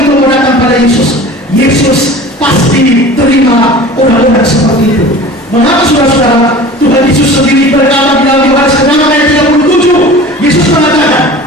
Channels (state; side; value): normal; both; correlation 0.40